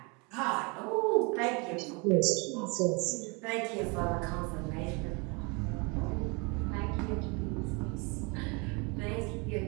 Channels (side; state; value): left; quieter; 30.2 dB